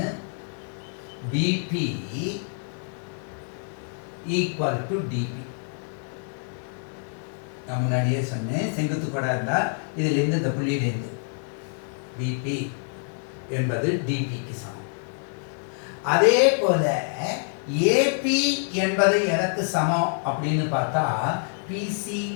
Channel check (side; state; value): right; silent; 58 dB below the other